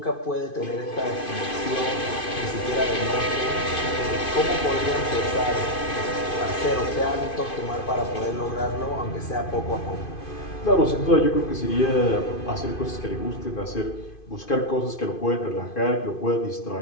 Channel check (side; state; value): right; late; 2.5 ms